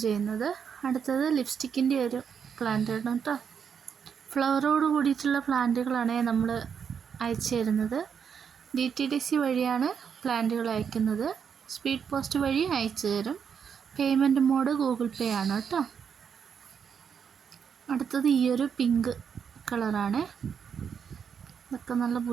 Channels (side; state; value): left; quieter; 7.1 dB